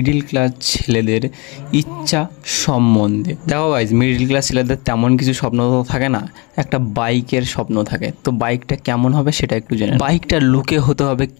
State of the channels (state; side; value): quieter; right; 28.6 dB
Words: ক্লাস ছেলেদের ইচ্ছা সম্বন্ধে। দেখো গাইস, মিডিল ক্লাস ছেলেদের তেমন কিছু স্বপ্ন তো থাকে না, একটা বাইকের স্বপ্ন থাকে। তো বাইকটা কেমন হবে সেটা একটু জেনে। বাইকটা লুকে হতে হবে